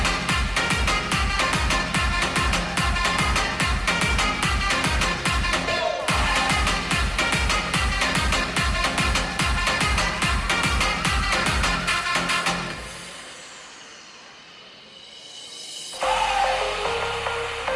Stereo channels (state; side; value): identical; both; correlation 1.00